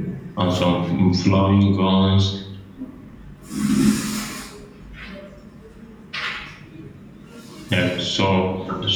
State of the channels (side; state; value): both; identical; correlation 1.00